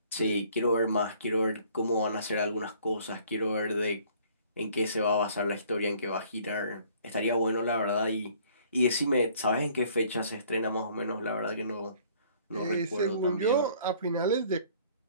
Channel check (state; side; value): inverted; both; correlation -0.57